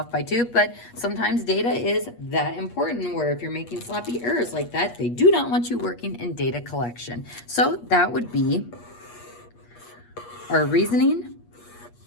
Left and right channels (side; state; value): right; late; 8.4 ms